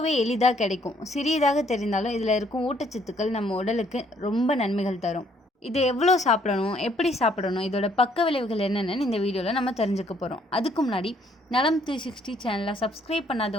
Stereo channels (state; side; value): normal; both; correlation 0.66